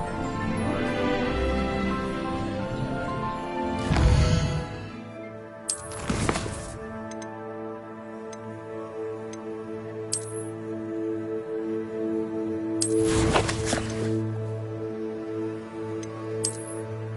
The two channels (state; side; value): identical; both; correlation 1.00